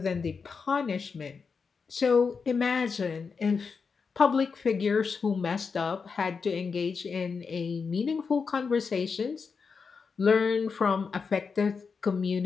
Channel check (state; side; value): quieter; right; 5.3 dB